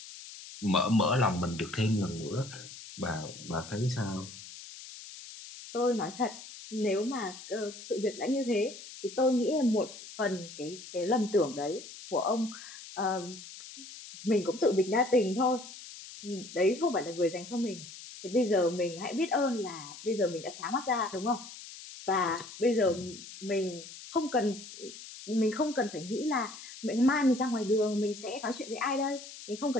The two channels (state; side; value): noise; left; hiss, 14 dB below the sound